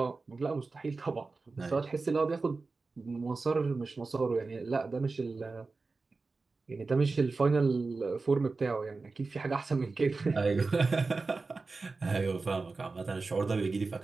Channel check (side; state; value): left; quieter; 3.9 dB